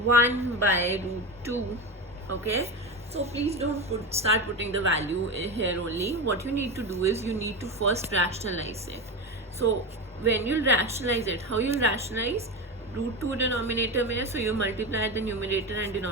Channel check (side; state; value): both; normal; correlation 0.20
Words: by root 2, okay, so please don't start putting the value here only. What you need to do is you need to first rationalize it. So when you rationalize it, how you'll rationalize? Root 2 denominator में, so you multiply the numerator and